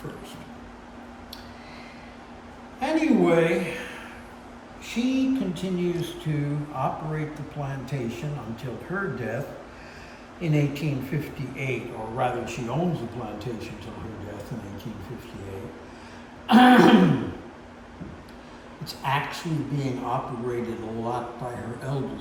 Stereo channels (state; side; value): identical; both; correlation 1.00